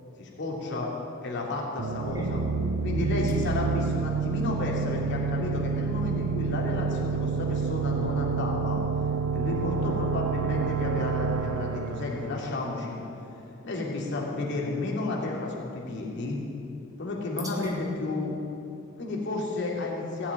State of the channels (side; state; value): both; normal; correlation 0.34